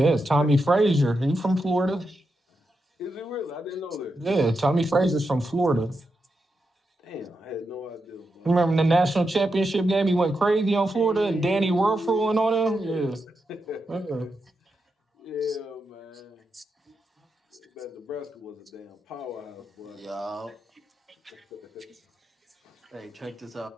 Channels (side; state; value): both; normal; correlation 0.86